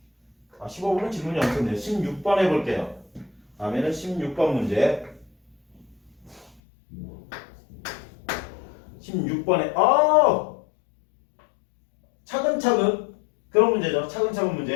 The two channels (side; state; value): right; drops out; at 6.6 s